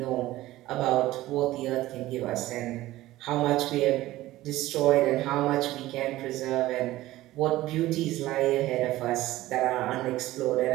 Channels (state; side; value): quieter; left; 16.5 dB